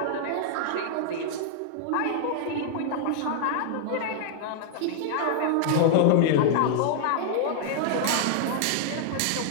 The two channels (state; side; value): different; both; correlation -0.01